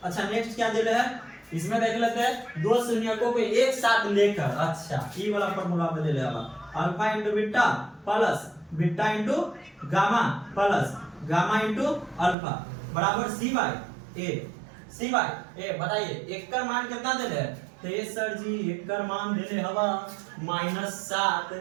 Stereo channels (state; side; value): drops out; left; at 12.4 s